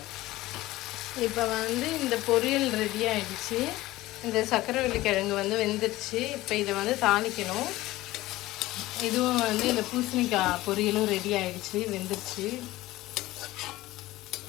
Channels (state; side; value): quieter; right; 17.5 dB